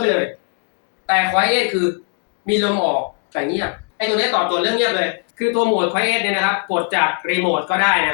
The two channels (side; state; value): right; quieter; 37.7 dB